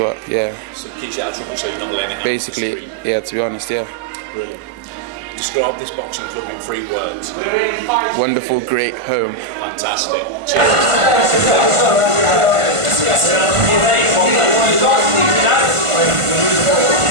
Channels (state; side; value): late; left; 1.5 ms